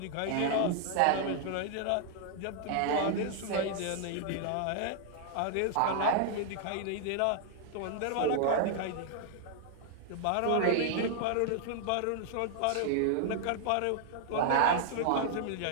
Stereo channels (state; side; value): different; both; correlation 0.00